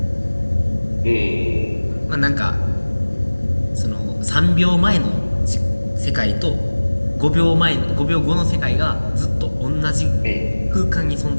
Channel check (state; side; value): inverted; both; correlation -1.00